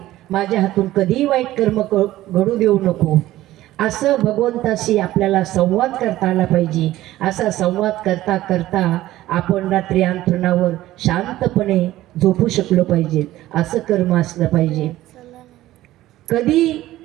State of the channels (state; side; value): quieter; left; 15.4 dB